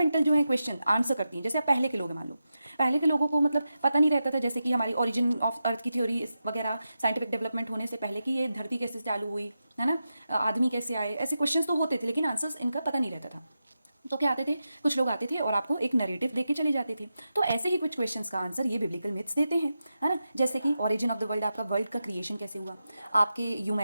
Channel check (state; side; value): inverted; both; correlation -0.90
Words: जो है क्वेश्चन आंसर करती हैं। जैसे आप पहले के लोग हैं, मान लो पहले के लोगों को मतलब पता नहीं रहता था, जैसे कि हमारी ओरिजिन ऑफ अर्थ की थ्योरी वगैरह, साइंटिफिक डेवलपमेंट होने से पहले कि ये धरती कैसे चालू हुई, है ना, आदमी कैसे आए, ऐसे क्वेश्चंस तो होते थे, लेकिन आंसर्स इनका पता नहीं रहता था। तो क्या आते थे, कुछ लोग आते थे और आपको एक नरेटिव देके चले जाते थे। तो ऐसे ही कुछ क्वेश्चंस का आंसर ये बिब्लिकल मिथ्स देते हैं, है ना। जैसे कि ओरिजिन ऑफ द वर्ल्ड, आपका वर्ल्ड का क्रिएशन कैसे हुआ, आपके